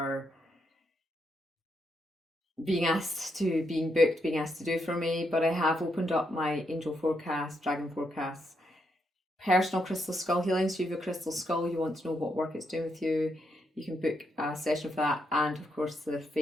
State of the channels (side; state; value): both; normal; correlation 0.80